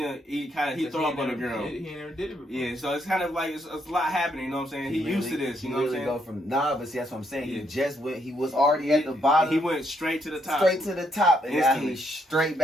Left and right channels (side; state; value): both; normal; correlation 0.75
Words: throw up on the girl. He never did it before. Yeah, so it's kind of like it's a lot happening, you know what I'm saying? He used to this, you know what I'm saying? Go from but see, that's what I'm saying. Yeah. He was already at the bottom. He went straight to the top. And now he's straight